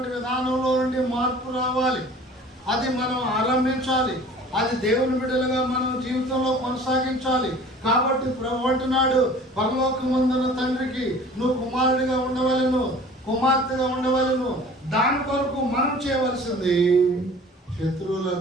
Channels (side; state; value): both; normal; correlation 0.46